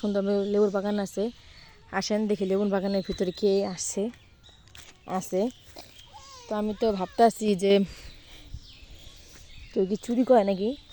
সুন্দর লেবুর বাগান আছে। আসেন দেখি লেবুর বাগানের ভিতরে কে আছে। তো আমি তো ভাবতেছি যে কেউ কি চুরি করে নাকি।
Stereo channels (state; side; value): identical; both; correlation 1.00